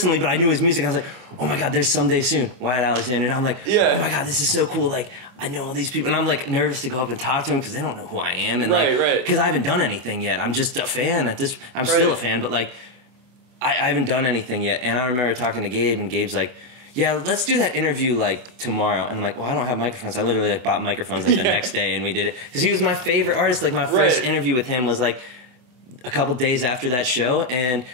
but I knew his music. I was like, oh my god, there's Someday Soon, Wyatt Alexander, and I'm like, oh my god, this is so cool. Like, I know all these people, and I'm like nervous to go up and talk to them because they don't know who I am, and like, because I haven't done anything yet. I'm just a fan at this. I'm still a fan, but like, I haven't done anything yet. And I remember talking to Gabe, and Gabe's like, yeah, let's do that interview like tomorrow. And I'm like, well, I don't have microphones. I literally like bought microphones like the next day, and we did it because he was my favorite artist. Like my first interview with him was like a couple days after that show, and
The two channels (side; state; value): left; late; 24 ms